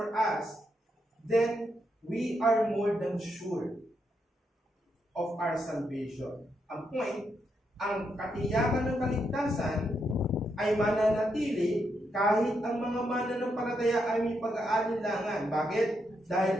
us, then we are more than sure of our salvation. Ang point, ang katiyakan ng kaligtasan ay mananatili kahit ang mga mananampalataya ay may pag-aalinlangan. Bakit?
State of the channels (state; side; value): normal; both; correlation 0.81